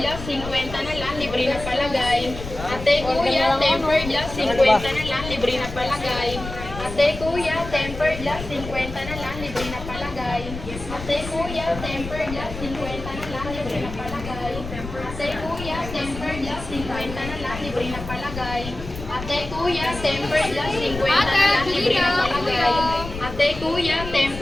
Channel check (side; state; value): left; noise; rumble, 10 dB below the sound